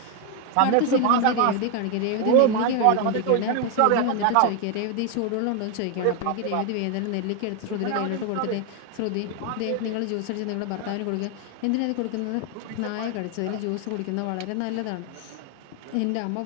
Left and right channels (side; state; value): both; different; correlation 0.01